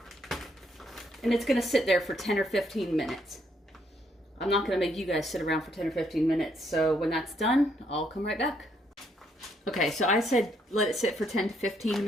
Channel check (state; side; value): normal; both; correlation 0.72